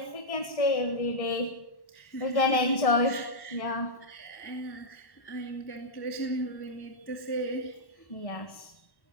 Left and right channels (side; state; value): right; late; 1.1 ms